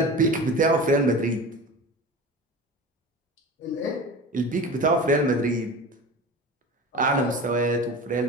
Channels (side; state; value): both; normal; correlation 0.33